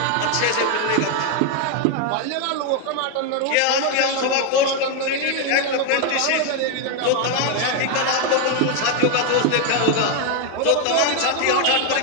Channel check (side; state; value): both; different; correlation 0.01